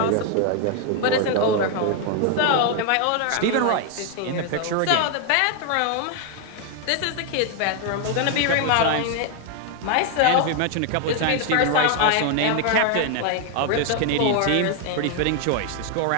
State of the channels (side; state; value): both; different; correlation 0.01